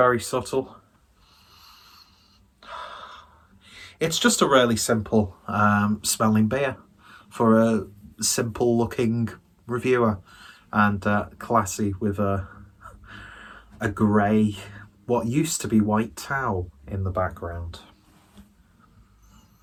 subtle. It's just a really simple smelling beer for a simple looking reviewer. And classy with a grey, what used to be white towel in the background.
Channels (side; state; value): both; identical; correlation 1.00